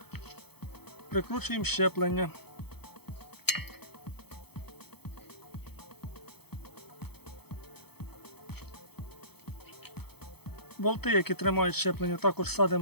прикручуємо щеплення. Болти, які тримають щеплення, також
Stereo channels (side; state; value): right; late; 0.97 ms